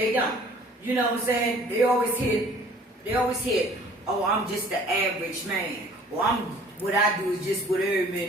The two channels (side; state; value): both; normal; correlation 0.52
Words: don't. You know what I'm saying? They always hit, oh, I'm just the average man. Or what I do is just what every